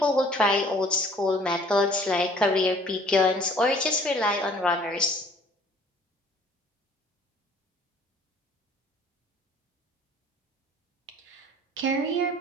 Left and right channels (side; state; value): both; normal; correlation 0.55